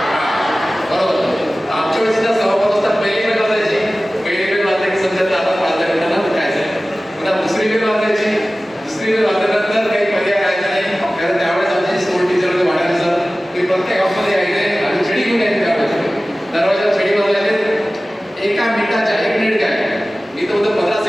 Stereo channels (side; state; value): both; normal; correlation 0.97